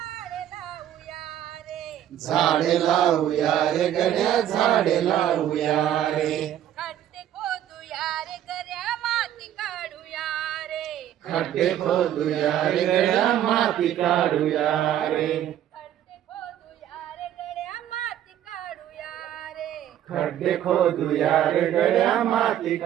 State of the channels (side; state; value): left; quieter; 11.2 dB